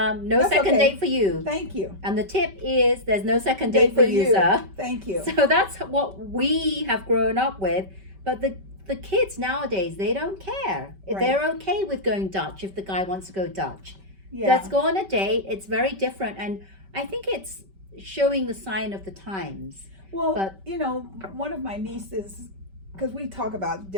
That's second okay. date for you. Thank you. And the tip is there's no second date for you, sir. Thank you. So that's what we have grown up with. But the kids nowadays, they don't care. If Right. they're okay with going Dutch if the guy wants to go Dutch. Yeah. Let's go on a date. It's very different. And I think it's showing the sign of the times. Well, But- one of my nieces, because we talk about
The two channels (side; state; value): left; late; 5.2 ms